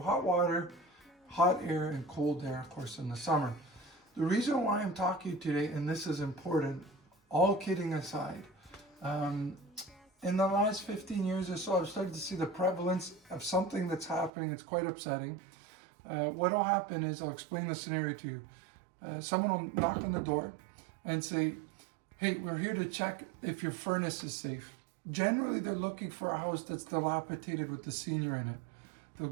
water, hot air, and cold air, of course, in the summer. The reason why I'm talking today, and this is important, all kidding aside, in the last 15 years or so, I've started to see the prevalence of something that's happening. It's quite upsetting. What will happen is, I'll explain the scenario to you. Someone will knock on the door and say, hey, we're here to check if your furnace is safe. Generally, they're looking for a house that's dilapidated with the senior in it. They'll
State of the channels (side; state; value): left; drops out; at 14.3 s